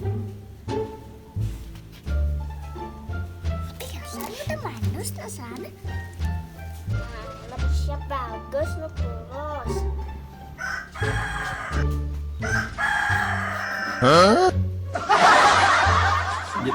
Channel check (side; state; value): both; identical; correlation 1.00